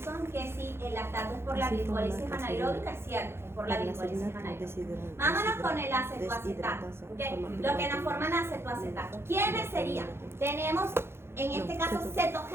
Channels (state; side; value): late; left; 0.12 ms